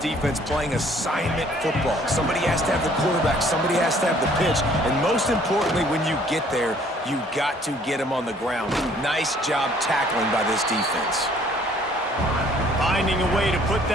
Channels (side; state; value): both; normal; correlation 0.59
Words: playing assignment football. Somebody has to have the quarterback. Somebody has to have the pitch. And most importantly, when you get there, you got to get him on the ground. Nice job tackling by this defense. Finding a way to put